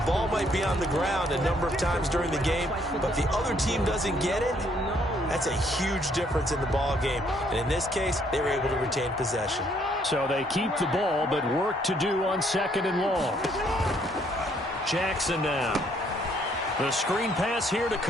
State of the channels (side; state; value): both; normal; correlation 0.67